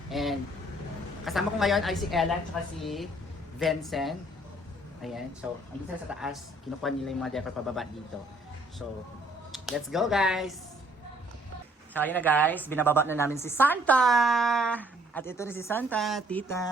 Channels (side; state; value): both; normal; correlation 0.62